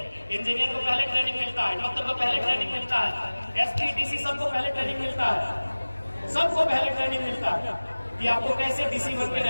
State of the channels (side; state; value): both; inverted; correlation -1.00